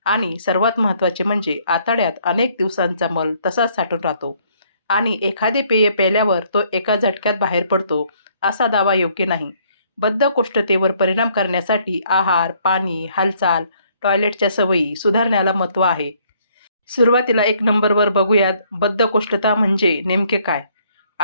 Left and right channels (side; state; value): both; inverted; correlation -0.65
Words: आणि सर्वात महत्त्वाचे म्हणजे आतड्यात अनेक दिवसांचा मल तसाच साठून राहतो. आणि एखादे पेय प्यायल्यावर तो एका झटक्यात बाहेर पडतो, असा दावा योग्य नाही. बद्धकोष्ठतेवर परिणाम करण्यासाठी आहार, पाणी, हालचाल, टॉयलेटच्या सवयी सुधारण्याला महत्त्व आहे. सुरुवातीला 1 नंबरवर बघूयात बद्धकोष्ठता म्हणजे नेमके काय?